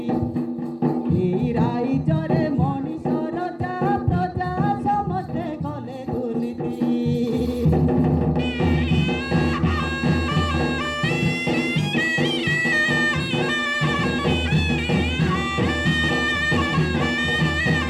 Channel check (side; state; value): both; identical; correlation 1.00